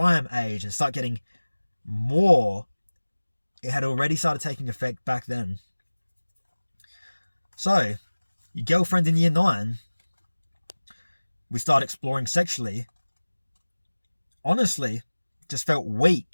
age and start getting more, it had already started taking effect back then. So, your girlfriend in year 9, we start exploring sexually. Honestly, just felt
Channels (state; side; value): inverted; both; correlation -1.00